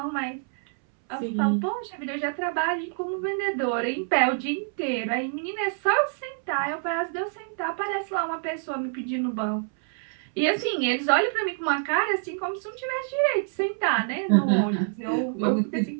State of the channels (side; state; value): left; silent; 60 dB below the other